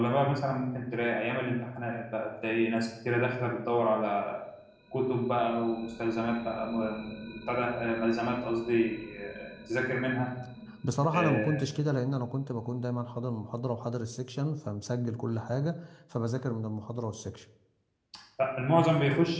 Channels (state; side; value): identical; both; correlation 1.00